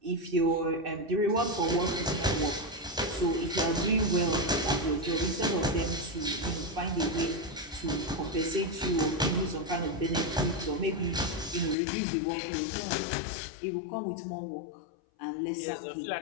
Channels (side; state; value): right; drops out; at 11.8 s